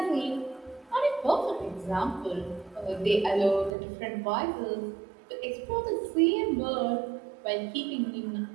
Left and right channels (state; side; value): drops out; left; at 3.7 s